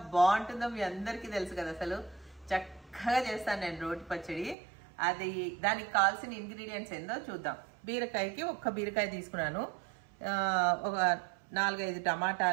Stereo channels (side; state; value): left; drops out; at 4.5 s